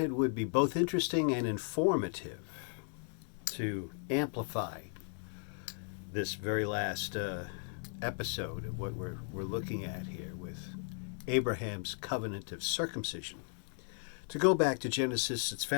would be both interesting and informative to amplify this very last episode of what we're looking at here with Abraham's covenant of circumcision. To go back to Genesis, it's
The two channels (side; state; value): right; silent; 54 dB below the other